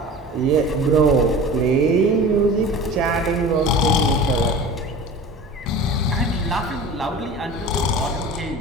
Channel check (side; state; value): both; normal; correlation 0.37